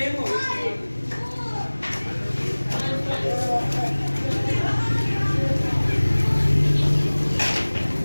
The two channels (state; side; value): inverted; both; correlation -1.00